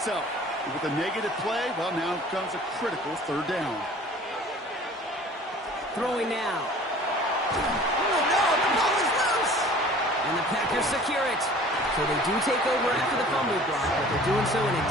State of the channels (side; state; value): both; normal; correlation 0.47